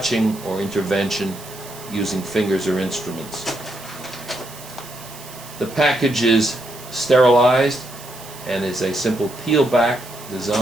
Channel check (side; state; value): right; noise; hiss, 16 dB below the sound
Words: or intervention using fingers or instruments. The package is sterilized and is a simple peel-back